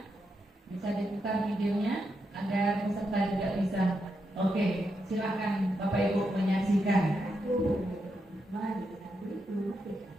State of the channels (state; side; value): normal; both; correlation 0.83